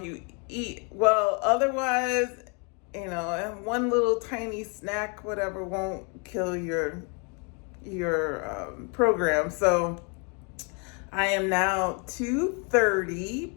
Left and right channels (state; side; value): quieter; right; 35.2 dB